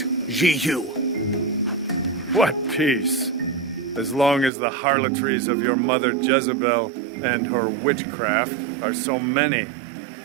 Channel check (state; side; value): drops out; left; at 4.5 s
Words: Jehu? What peace? As long as the harlotries of your mother Jezebel and her witchcraft are so many.